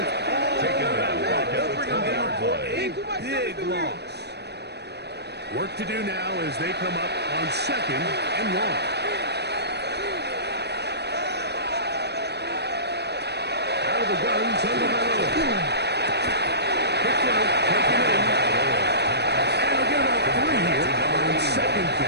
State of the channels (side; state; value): left; late; 0.49 ms